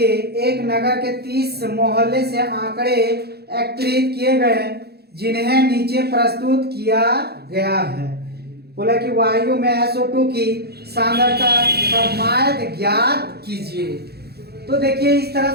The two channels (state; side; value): late; left; 0.47 ms